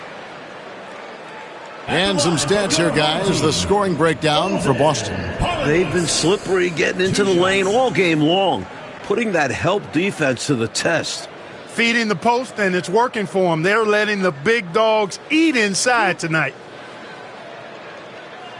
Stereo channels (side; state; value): both; identical; correlation 1.00